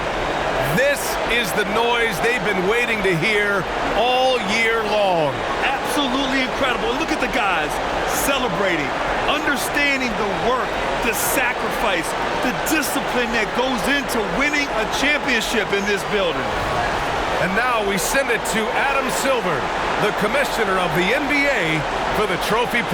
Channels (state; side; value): identical; both; correlation 1.00